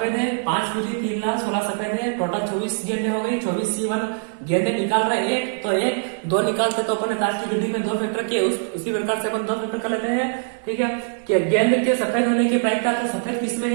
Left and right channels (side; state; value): left; silent; 64 dB below the other